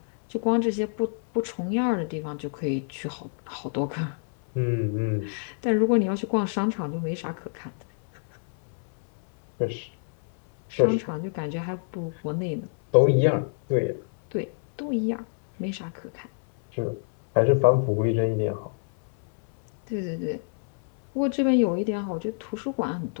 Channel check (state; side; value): silent; right; 61 dB below the other